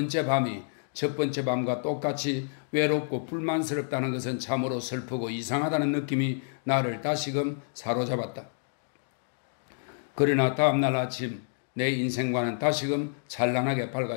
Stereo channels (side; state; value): right; silent; digital silence